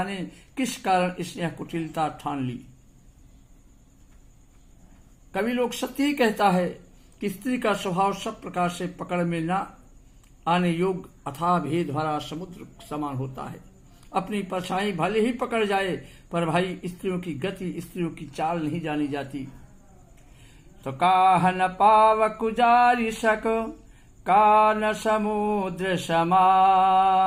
किस कारण इसने यह कुटिलता ठान ली। कवि लोग सत्य ही कहता है कि स्त्री का स्वभाव सब प्रकार से पकड़ में न आने योग्य अथाह भेद भरा समुद्र समान होता है। अपनी परछाई भले ही पकड़ जाए पर भाई स्त्रियों की गति, स्त्रियों की चाल नहीं जानी जाती। तो काहन पाव कुजारी सक कान समुद्र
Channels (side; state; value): both; identical; correlation 1.00